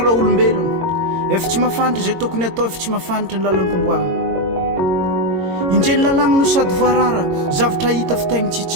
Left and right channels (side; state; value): left; late; 22 ms